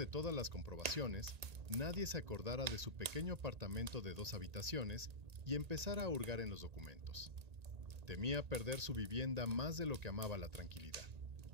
todas las comprobaciones, nadie se acordara de su pequeño apartamento de 2 habitaciones y empezara a hurgar en los documentos. Temía perder su vivienda más de lo que amaba la tranquilidad.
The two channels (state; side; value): late; left; 1.8 ms